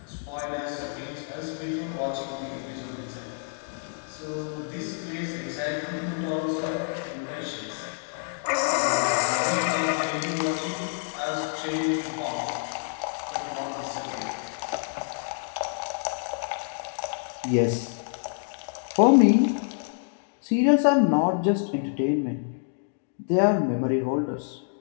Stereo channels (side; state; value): right; silent; digital silence